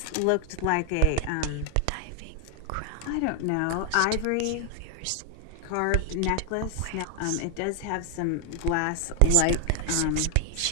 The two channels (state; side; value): different; both; correlation 0.00